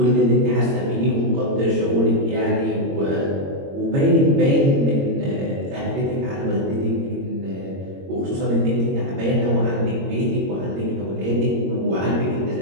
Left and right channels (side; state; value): left; late; 22 ms